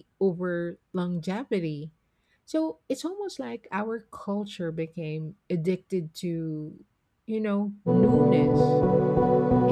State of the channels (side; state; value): both; identical; correlation 1.00